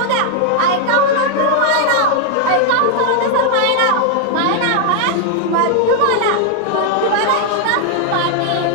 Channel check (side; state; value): both; different; correlation 0.00